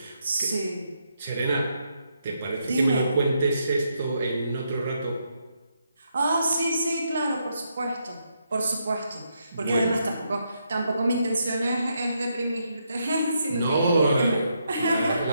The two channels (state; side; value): inverted; both; correlation -0.79